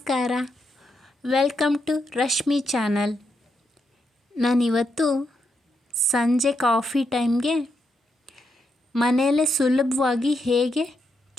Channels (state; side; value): normal; both; correlation 0.81